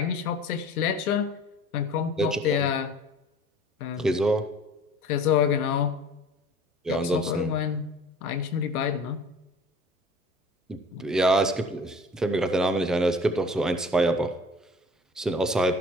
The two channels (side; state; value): both; normal; correlation 0.45